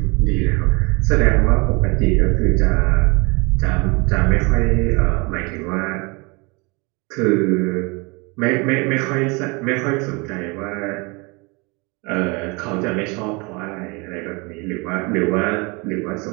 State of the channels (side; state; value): left; quieter; 28.3 dB